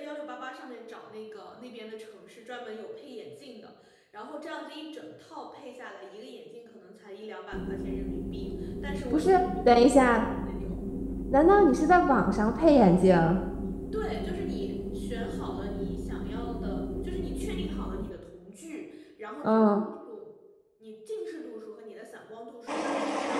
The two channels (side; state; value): both; identical; correlation 1.00